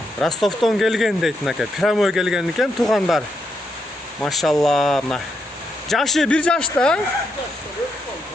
Ростовдон келген дейт мынакей. Прямой келген экен туугандар. Машалла, мына. Жашы 1 жашта.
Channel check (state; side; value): normal; both; correlation 0.81